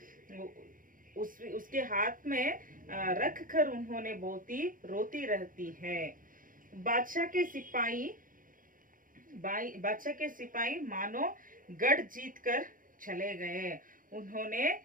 उसके हाथ में रख कर उन्होंने बहुत ही रोती रहती है। बादशाह के सिपाही मानो गढ़ जीत कर चले गए। उन्होंने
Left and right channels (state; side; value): late; left; 0.40 ms